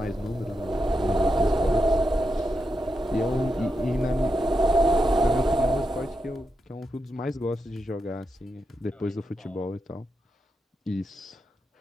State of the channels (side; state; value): both; normal; correlation 0.86